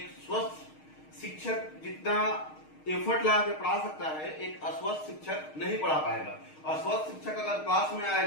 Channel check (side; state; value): right; late; 6.4 ms